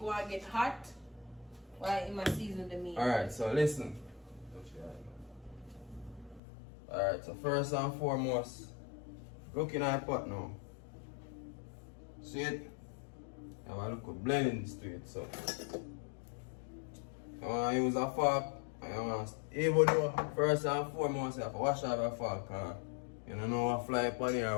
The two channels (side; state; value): right; drops out; at 6.4 s